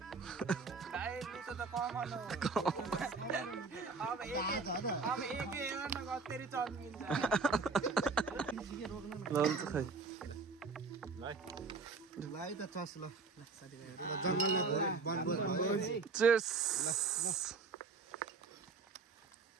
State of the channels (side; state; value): left; quieter; 4.4 dB